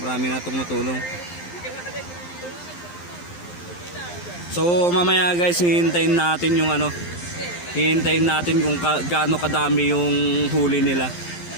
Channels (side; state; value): right; late; 12 ms